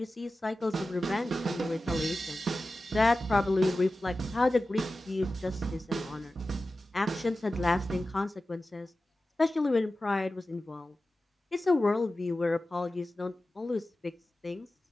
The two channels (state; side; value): normal; both; correlation 0.94